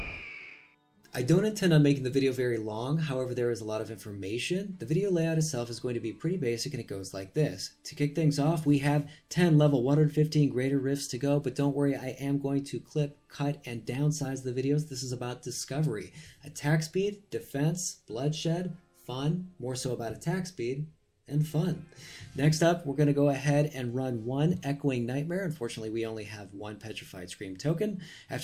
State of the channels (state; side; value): identical; both; correlation 1.00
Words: I don't intend on making the video very long, however there is a lot of information. The video layout itself is going to be pretty basic and it goes like this. To kick things off, we have 10 level 115 greater rifts to go, but don't worry, I am going to clip, cut, and downsize the videos. This is about discovery. Attack speed, defense, bloodshed, fun, more so about attack speed, and fun. Next up, we're going to go ahead and run one Echoing Nightmare. Unfortunately, we only have one Petrified Scream token.